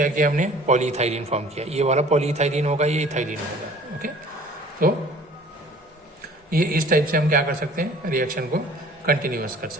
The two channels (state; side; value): normal; both; correlation 0.49